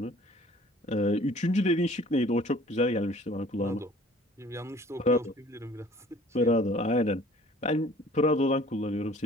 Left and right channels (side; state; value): both; normal; correlation 0.52